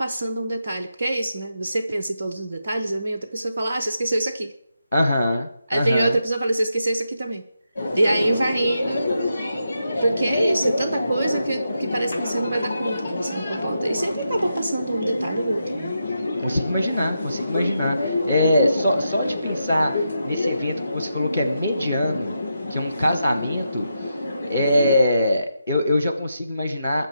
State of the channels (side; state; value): both; inverted; correlation -0.84